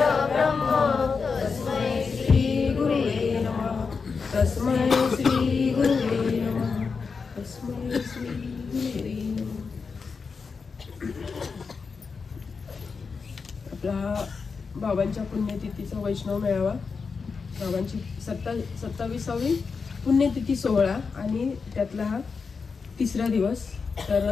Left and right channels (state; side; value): quieter; right; 5.1 dB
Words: तस्मै श्री गुरुवे नमः. तस्मै श्री गुरुवे नमः. तस्मै श्री गुरुवे नमः. आपला बाबांच्या पुण्यतिथीचा वैष्णव मेळावा, बाबांची 27वी पुण्यतिथी सोहळा आणि त्यातला हा तिसरा दिवस.